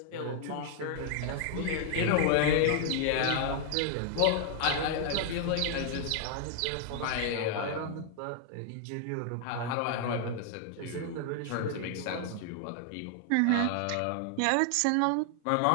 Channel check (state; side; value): different; both; correlation 0.00